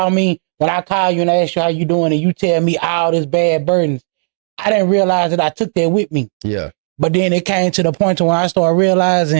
me, when I call you and I ask you how you doing and you tell me all this bad burdens, I didn't realize that I took that with me. Yeah. But then it came to the point when I started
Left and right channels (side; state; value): left; silent; digital silence